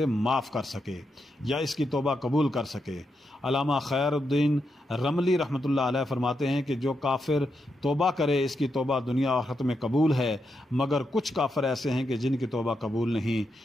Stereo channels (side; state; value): both; normal; correlation 0.84